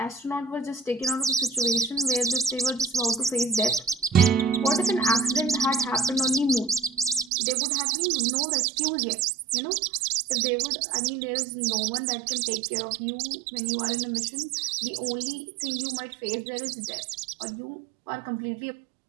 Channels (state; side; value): drops out; left; at 7.3 s